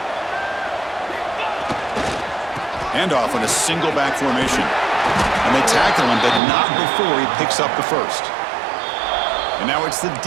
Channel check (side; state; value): left; drops out; at 6.4 s